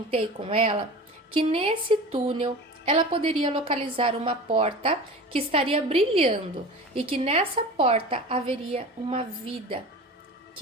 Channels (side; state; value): both; normal; correlation 0.35